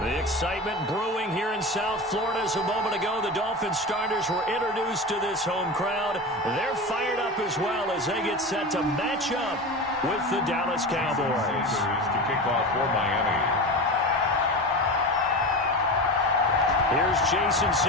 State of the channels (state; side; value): normal; both; correlation 0.26